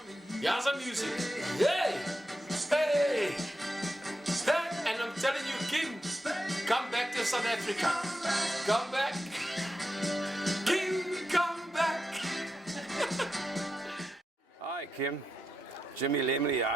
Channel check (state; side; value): normal; both; correlation 0.87